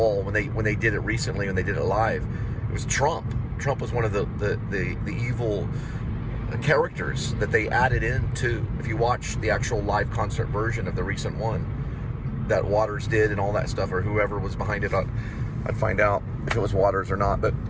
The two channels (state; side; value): identical; both; correlation 1.00